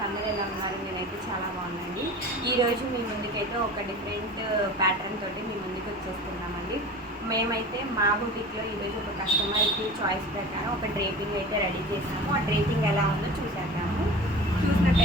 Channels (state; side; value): normal; both; correlation 0.37